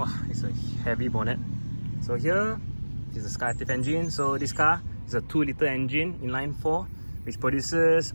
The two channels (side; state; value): both; inverted; correlation -1.00